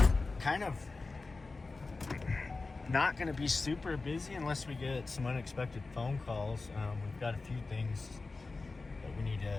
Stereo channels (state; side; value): quieter; right; 3.7 dB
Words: Kind of not going to be super busy unless we get some unexpected phone calls. We've got a few things that we need